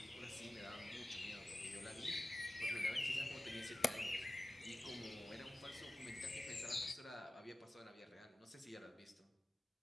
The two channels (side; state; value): both; normal; correlation 0.96